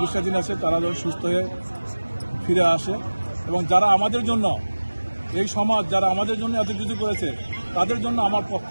আছে তারা যেন সুস্থ হয়ে ফিরে আসে, এবং যারা আমাদের জন্য এই সমাজ যারা আমাদের জন্য এত কিছু করেছে তাদের জন্য আমার পক্ষ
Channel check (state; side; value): inverted; both; correlation -1.00